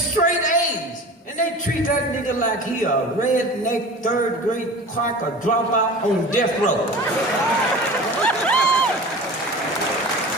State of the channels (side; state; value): both; normal; correlation 0.36